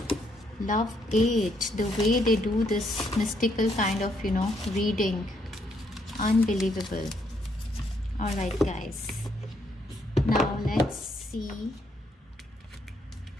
love it. The way they do this mystical kind of, you know, reading. Unbelievable. All right, guys. Now let's see.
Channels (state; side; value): normal; both; correlation 0.73